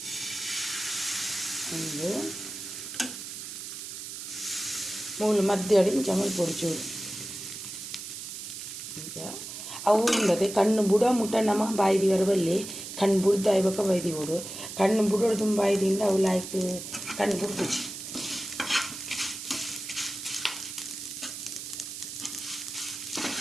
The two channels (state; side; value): noise; right; hiss, 9 dB below the sound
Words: ಒಂದು ಮೂಲು ಮಧ್ಯ ಇಂಚ ಮೈ ಪೊಡ್ಚೂರು ಅವು ಇಲ್ಲದೆ ಕಣ್ಣು ಬುಡ ಮುಟ್ಟ ನಮ್ಮ ಬಾಯಿದಿ ವರಬಲ್ಲಿ ಕಣ್ಣು ಬುಡ್ದು ಆಯ್ಬೇಕ ಬೈದಿ ಬಿಡು ಕಣ್ಣು ಬುಡೋಡು ತುಂಬ ಬೈದಿಂದ ಅವು ಲಾಯ್ಕ್ ಕಣ್ಣು ಬುಡ್ದು